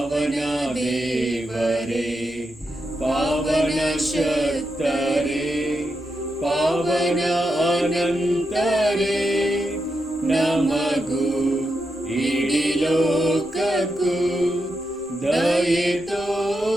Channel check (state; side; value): normal; both; correlation 0.85